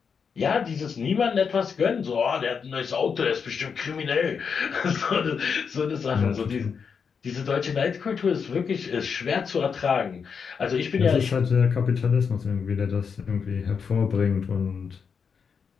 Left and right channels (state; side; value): quieter; right; 6.2 dB